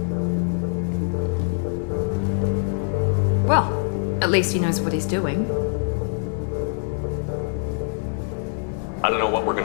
Well, at least he knows what he's doing. I don't know what we're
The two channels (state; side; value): silent; right; 63 dB below the other